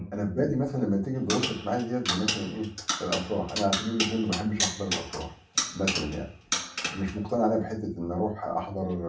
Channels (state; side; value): identical; both; correlation 1.00